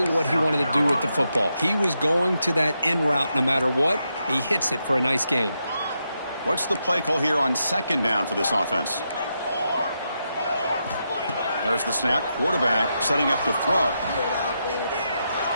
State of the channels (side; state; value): both; inverted; correlation -0.84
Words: what he wanted to do with the football. He was going to that in route no matter what. He hits it for a nice gain. What's the play call here on 2nd down for this offense? There's the snap. Quarterback setting up to throw.